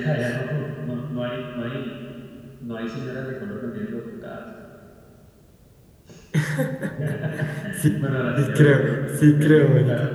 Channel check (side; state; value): both; identical; correlation 1.00